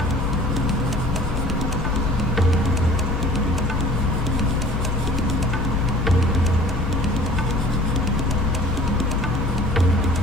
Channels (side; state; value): both; normal; correlation 0.48